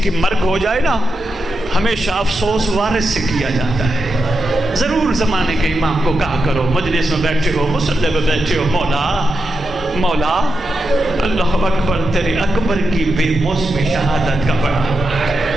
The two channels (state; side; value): normal; both; correlation 0.87